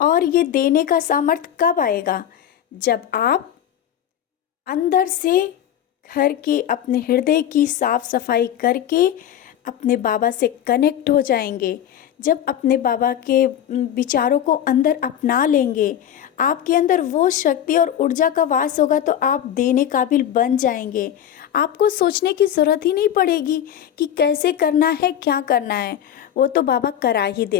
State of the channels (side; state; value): right; quieter; 10.3 dB